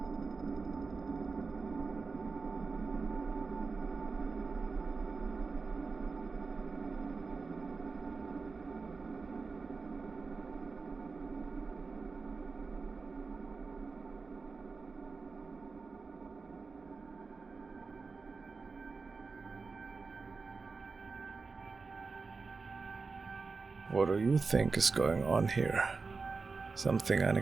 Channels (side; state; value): left; quieter; 4.4 dB